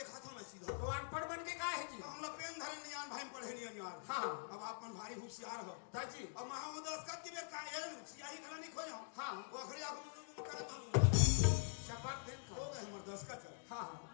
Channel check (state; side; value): silent; right; digital silence